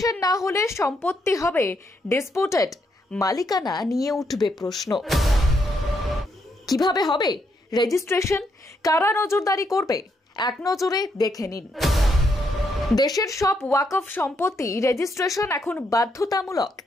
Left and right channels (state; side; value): normal; both; correlation 0.77